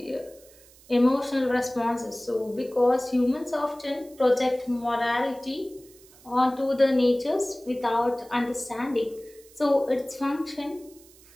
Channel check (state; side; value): noise; right; hiss, 25 dB below the sound